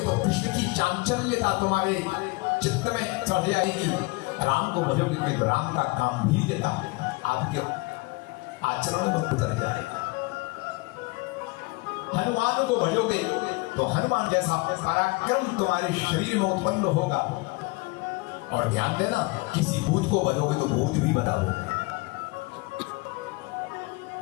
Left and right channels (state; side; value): quieter; right; 25.1 dB